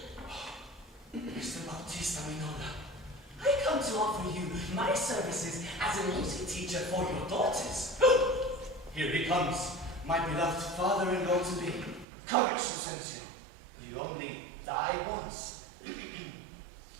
Mr. Bautista Minola, I come to offer you my services as a music teacher for your daughters. Here he comes, my beloved father-in-law to be. Courage, Lucentio. You only die once.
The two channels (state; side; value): drops out; left; at 12.1 s